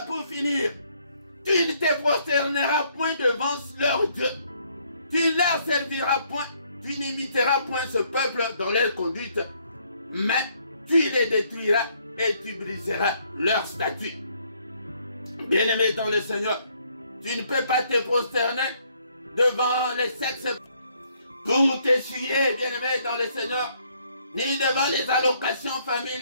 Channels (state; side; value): inverted; both; correlation -0.68